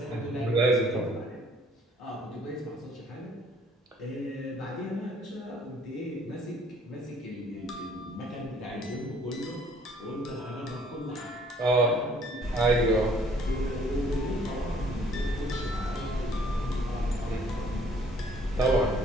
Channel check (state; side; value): normal; both; correlation 0.59